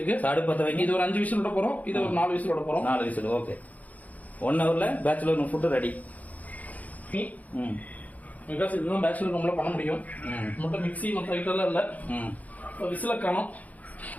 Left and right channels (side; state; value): right; late; 0.075 ms